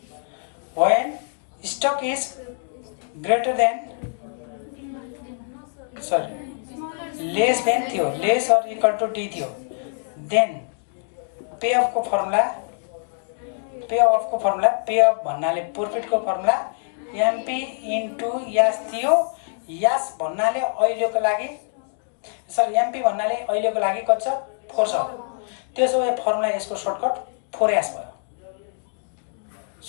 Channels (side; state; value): right; silent; 62 dB below the other